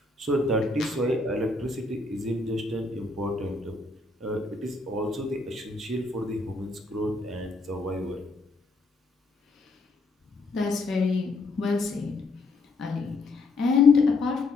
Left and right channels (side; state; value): right; quieter; 3.3 dB